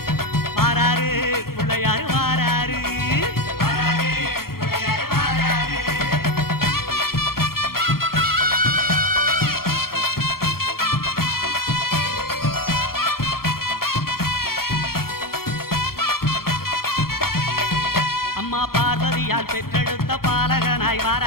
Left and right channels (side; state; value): right; late; 0.93 ms